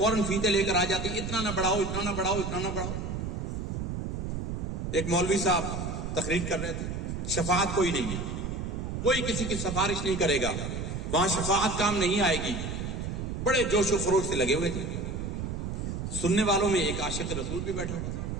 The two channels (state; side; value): noise; right; rumble, 4 dB below the sound